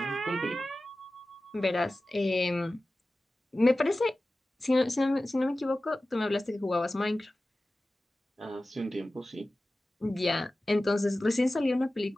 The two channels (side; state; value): both; normal; correlation 0.96